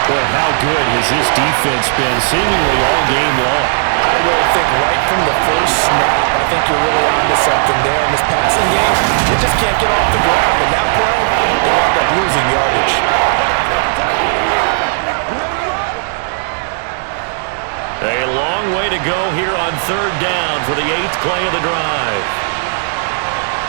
how good has this defense been seemingly all game long? I really think right from the first snap, I think you're really onto something there in this passing game. They just can't get off the ground. In that play, they wound up losing yardage. A long way to go here on 3rd down for the 8th play of the drive.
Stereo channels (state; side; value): silent; left; digital silence